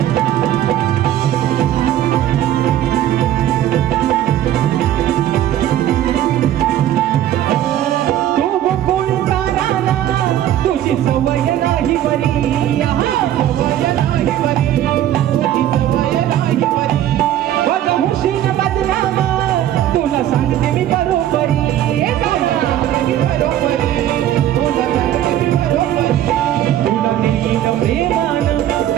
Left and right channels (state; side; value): quieter; left; 12.0 dB